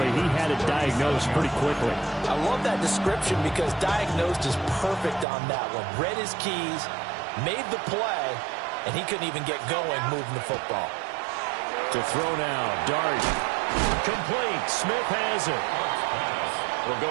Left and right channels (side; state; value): left; drops out; at 5.2 s